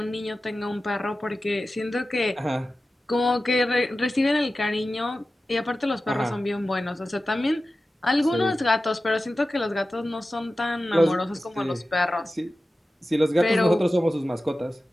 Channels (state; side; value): normal; both; correlation 0.94